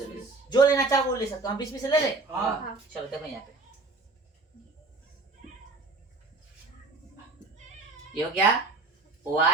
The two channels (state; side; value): quieter; left; 3.5 dB